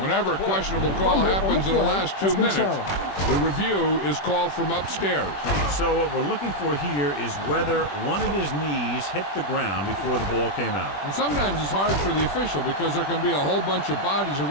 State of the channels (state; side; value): late; right; 21 ms